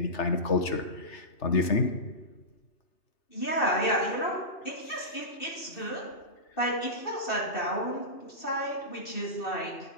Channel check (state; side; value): late; right; 3.3 ms